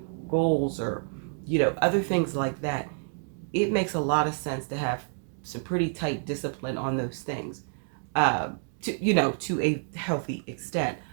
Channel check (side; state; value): left; silent; 59 dB below the other